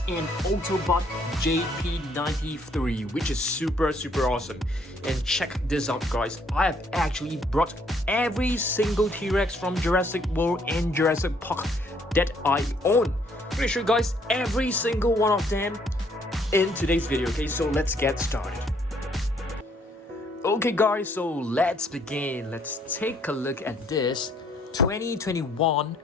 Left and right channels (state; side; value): normal; both; correlation 0.66